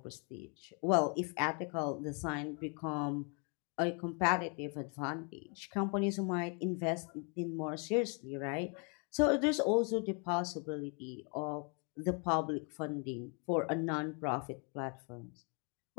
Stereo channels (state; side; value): quieter; right; 36.6 dB